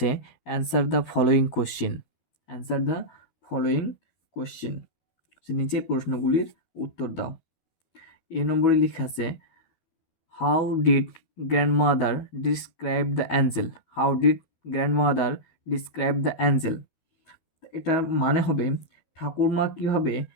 answer the following question. Answer the following question, নিচের প্রশ্নগুলির উত্তর দাও। এ নম্বরে লেখা আছে how did grandmother describe the Angel. How did grandmother describe the Angel. এটার মানে হবে ঠাকুরমা কীভাবে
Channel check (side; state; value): right; late; 12 ms